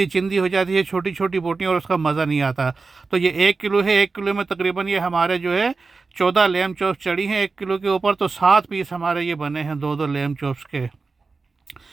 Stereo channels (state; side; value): quieter; left; 4.2 dB